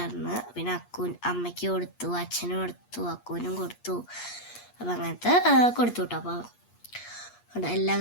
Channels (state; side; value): late; right; 8.4 ms